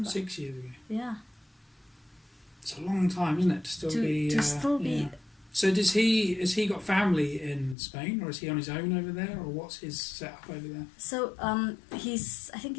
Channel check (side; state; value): right; drops out; at 7.8 s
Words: 6 years ago. Yeah. It's a long time, isn't it, to still be. Yeah. So has he got family in Spain, or is he on his own over there, or what's his setup over there? So I think